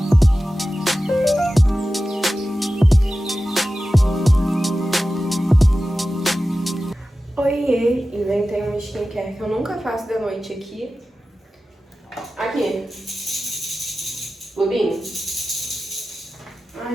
Oiê, inventei uma skincare que eu nunca faço de noite aqui. Aqui. Lubinho.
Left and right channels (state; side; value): normal; both; correlation 0.94